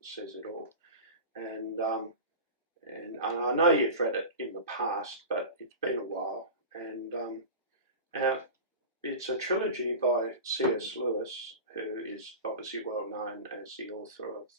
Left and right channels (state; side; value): inverted; both; correlation -0.30